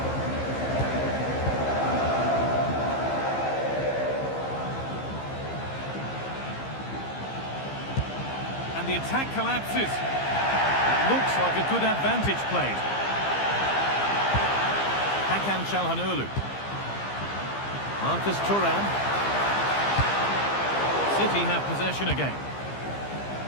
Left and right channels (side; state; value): right; late; 15 ms